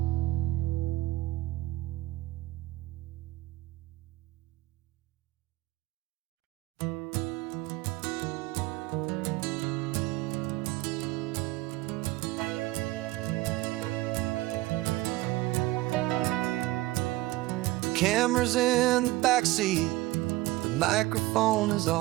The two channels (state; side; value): quieter; left; 19.0 dB